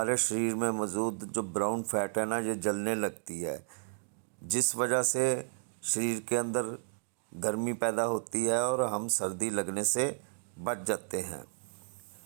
शरीर में मौजूद जो ब्राउन फैट है ना ये जलने लगती है, जिस वजह से शरीर के अंदर गर्मी पैदा होती है और हम सर्दी लगने से बच जाते हैं।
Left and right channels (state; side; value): silent; left; digital silence